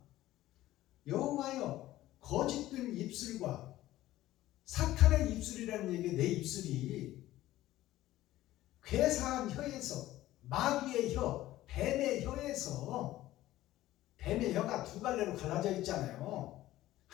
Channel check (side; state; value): right; quieter; 15.3 dB